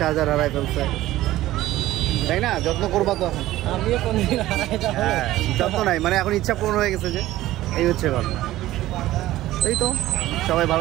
হারায় ফেলছে, তাই না? যত্ন করবা তো এখন। আমিও কোনদিন হারাই যাবো। হ্যাঁ, যত্ন নাই, মানে এখন ইচ্ছা পূরণ হয়ে গেছে যে, এই হচ্ছে ঘটনা। এই তো, সবাই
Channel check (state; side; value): quieter; left; 15.5 dB